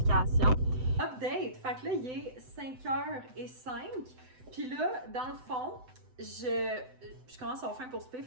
Update! Fait que là, il est 5h05. Puis là, dans le fond, je commence à avoir faim pour souper,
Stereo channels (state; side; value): late; left; 7.9 ms